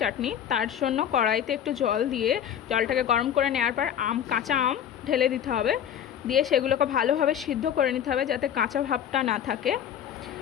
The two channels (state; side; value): quieter; right; 9.6 dB